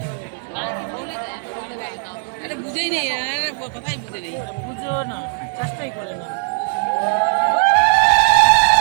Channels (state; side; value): silent; left; 60 dB below the other